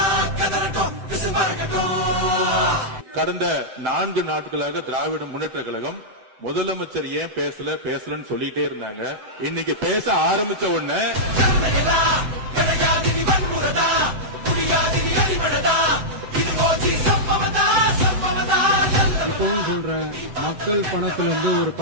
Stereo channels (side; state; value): left; late; 7.8 ms